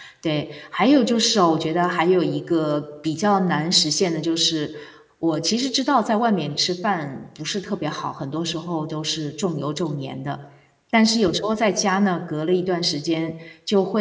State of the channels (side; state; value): both; identical; correlation 1.00